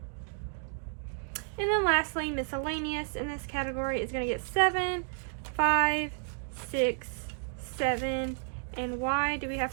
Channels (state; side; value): silent; left; 57 dB below the other